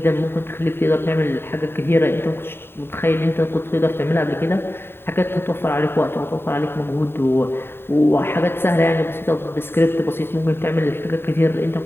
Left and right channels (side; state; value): right; late; 0.11 ms